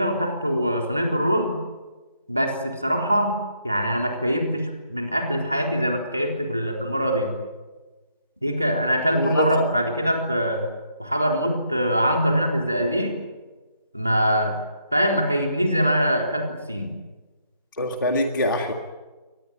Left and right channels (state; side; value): inverted; both; correlation -0.73